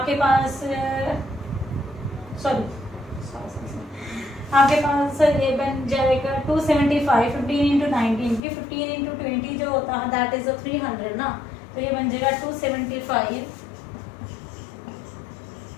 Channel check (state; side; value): drops out; right; at 8.4 s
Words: पास आपके पास ये बन जाएगा 275। 15 into 19 की 15 into 20 जो होता है दैट इज 300 ना, तो ये बन जाएगा 275